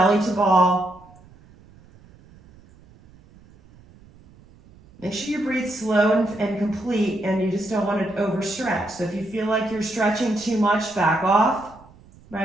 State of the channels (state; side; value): noise; right; rumble, 25 dB below the sound